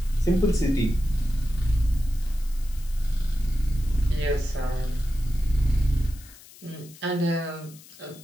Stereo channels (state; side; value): noise; left; hiss, 21 dB below the sound